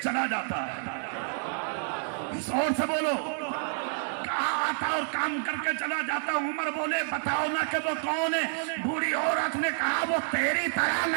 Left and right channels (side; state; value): left; silent; 55 dB below the other